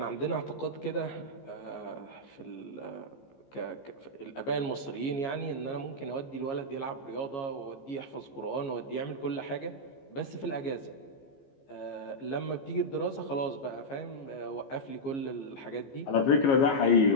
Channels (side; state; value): right; late; 15 ms